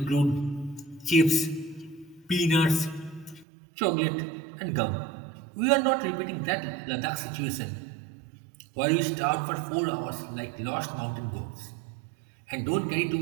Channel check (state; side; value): drops out; left; at 3.5 s